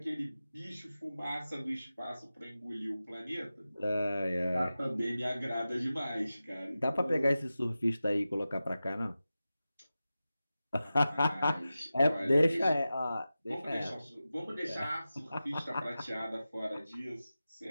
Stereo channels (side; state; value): both; inverted; correlation -0.94